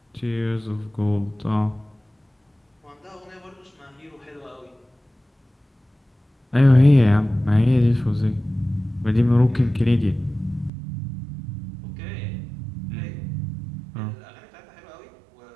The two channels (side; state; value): left; drops out; at 10.7 s